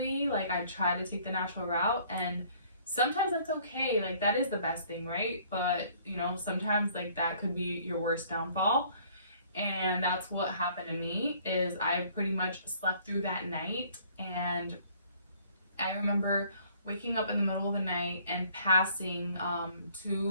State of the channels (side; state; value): both; inverted; correlation -0.58